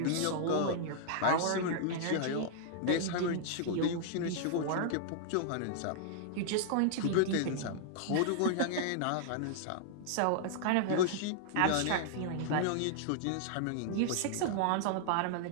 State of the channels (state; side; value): different; both; correlation -0.01